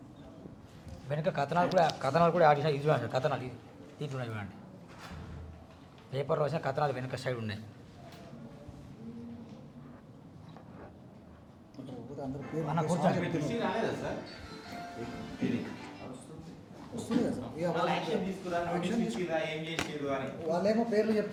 వెనుక కథనాలు కూడా యాడ్ చేసిన, ఇది చూడండి కథనాలు, దీంట్లో ఉన్నాయి చూడండి. పేపర్లో వచ్చిన కథనాలు వెనుక సైడ్ ఉన్నాయి. అన్న కూర్చోండి. వాళ్ళేమో పేర్లు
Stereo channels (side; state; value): both; identical; correlation 1.00